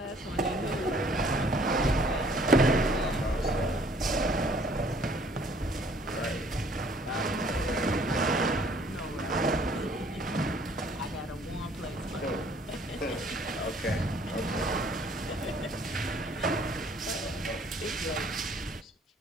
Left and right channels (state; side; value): normal; both; correlation 0.59